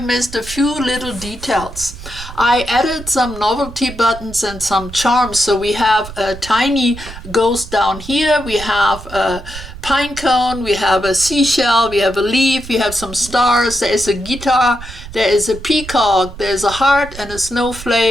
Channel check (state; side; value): noise; right; rumble, 13 dB below the sound